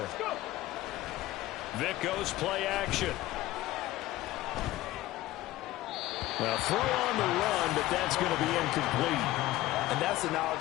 Vick goes play action. Well, throw on the run, but that's going to be incomplete. And that's the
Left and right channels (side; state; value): right; quieter; 16.2 dB